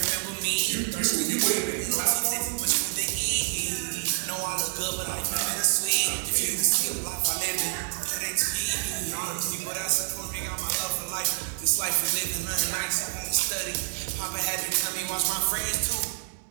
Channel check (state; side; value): silent; left; 60 dB below the other